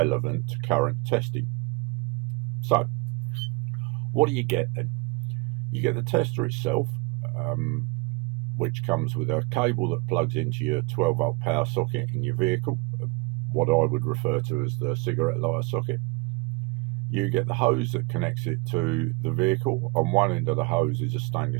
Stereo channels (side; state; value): left; quieter; 25.9 dB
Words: to current testing. So what do you get then? You get the tester itself, which comes with a cable that plugs into your 12-volt power socket in your vehicle, what I would refer to as the cigarette lighter socket. You get the hose that connects it to the vehicle. On one end of the hose is a